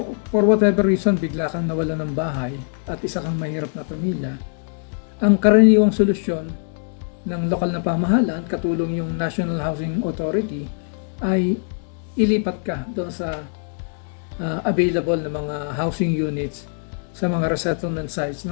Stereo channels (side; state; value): right; silent; digital silence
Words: for whatever reason, bigla kang nawala ng bahay at isa kang mahirap na pamilya, Ang karaniwang solusyon ng lokal na pamahalaan, katulong yung National Housing Authority, ay ilipat ka doon sa available na mga housing units sa mga resettlement sites